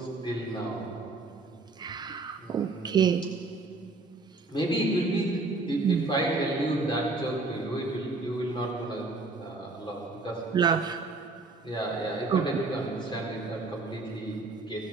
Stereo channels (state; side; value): quieter; left; 3.4 dB